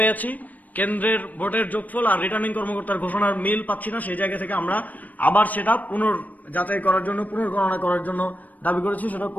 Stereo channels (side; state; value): right; late; 0.078 ms